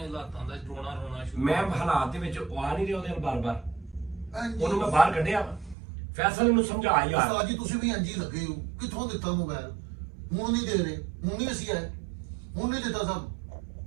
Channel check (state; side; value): drops out; left; at 5.8 s